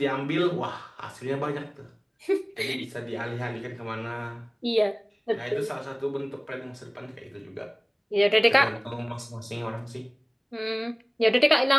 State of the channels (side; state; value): both; identical; correlation 1.00